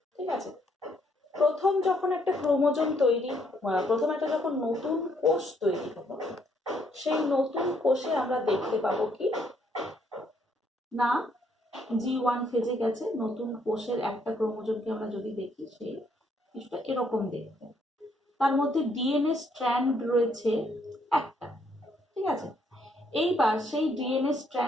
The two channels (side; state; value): both; normal; correlation 0.70